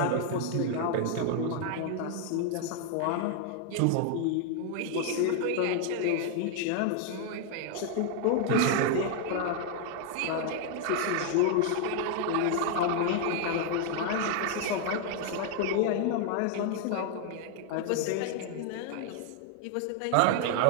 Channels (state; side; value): different; both; correlation 0.00